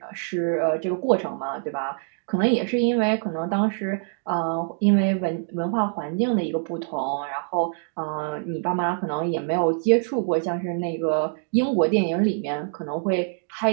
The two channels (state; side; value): silent; left; digital silence